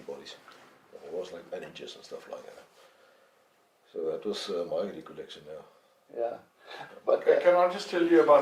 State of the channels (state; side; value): identical; both; correlation 1.00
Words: bodies. It was like bandages and stuff like that. So that was my recollection now. Yeah. But Okay, can I just tell you